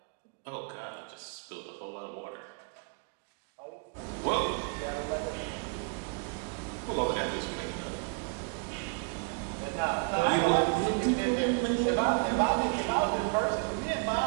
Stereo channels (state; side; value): quieter; left; 38.0 dB